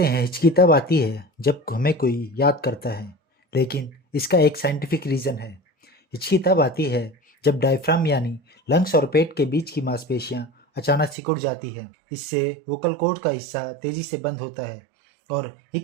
हैं हिचकी तब आती है जब हमें कोई याद करता है, लेकिन इसका एक साइंटिफिक रीज़न है। हिचकी तब आती है जब डायफ्राम यानी लंग्स और पेट के बीच की मांसपेशियां अचानक सिकुड़ जाती है। इससे वोकल कॉर्ड का हिस्सा तेजी से बंद होता है और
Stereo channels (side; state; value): left; drops out; at 11.2 s